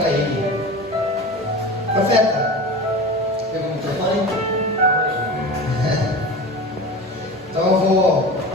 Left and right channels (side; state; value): both; normal; correlation 0.32